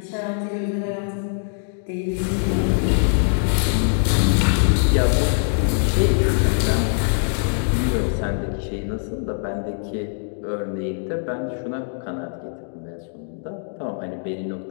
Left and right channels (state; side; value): silent; right; digital silence